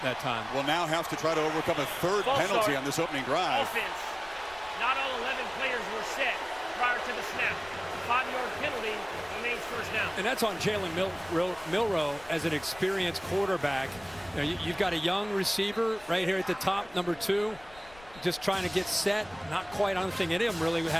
that time. Will now have to try to overcome a 3rd penalty on this opening drive. Offense. Not all 11 players were set prior to the snap. 5-yard penalty remains first down. And that's on Jalen Milro as an experienced quarterback. You've got a young receiver right here at the top, number 2, just trying to get set. Not quite, I don't think any of them really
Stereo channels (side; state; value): left; noise; rumble, 22 dB below the sound